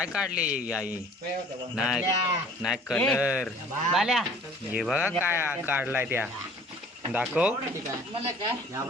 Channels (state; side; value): normal; both; correlation 0.51